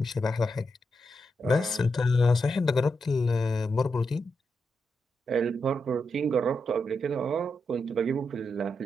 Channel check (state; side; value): normal; both; correlation 0.84